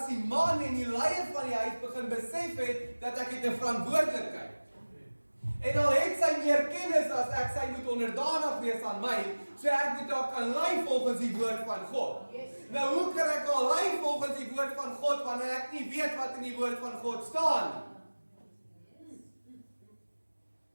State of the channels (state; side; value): inverted; both; correlation -1.00